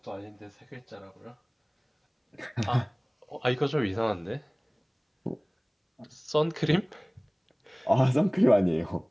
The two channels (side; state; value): both; identical; correlation 1.00